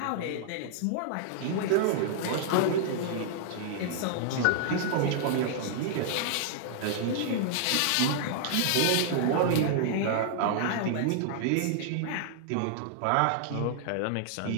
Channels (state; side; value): different; both; correlation -0.01